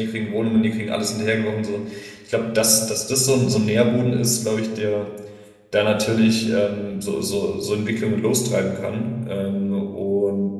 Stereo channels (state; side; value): identical; both; correlation 1.00